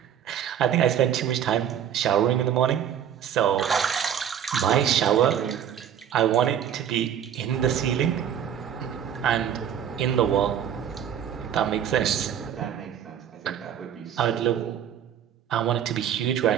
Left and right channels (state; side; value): quieter; left; 9.4 dB